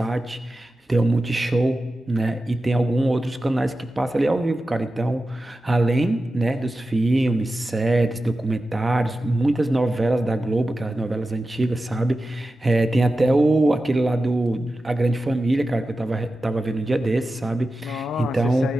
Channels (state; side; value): normal; both; correlation 0.93